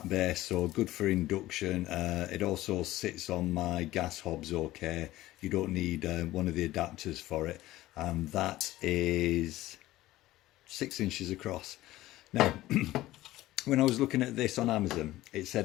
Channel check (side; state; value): right; quieter; 16.3 dB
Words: base, so good for induction. It also sits on my gas hobs okay. You don't need one of the adapters for it, and that is 6 inches across. Now, when I was looking at this on Amazon, it